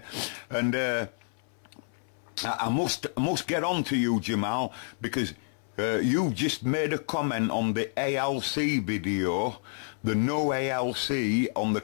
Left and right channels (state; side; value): silent; right; 58 dB below the other